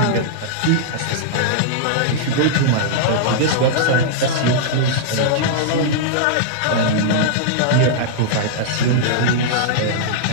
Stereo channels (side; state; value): both; different; correlation -0.02